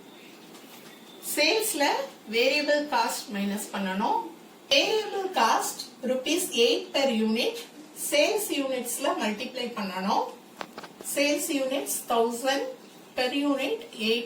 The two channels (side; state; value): both; identical; correlation 1.00